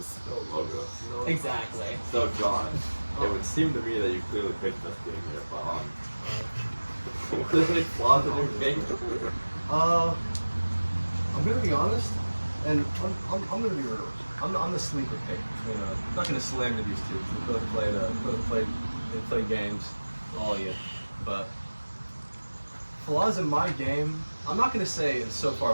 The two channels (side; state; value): both; inverted; correlation -1.00